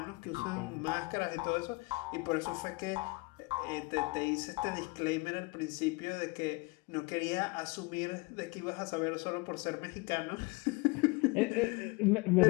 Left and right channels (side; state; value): right; quieter; 26.2 dB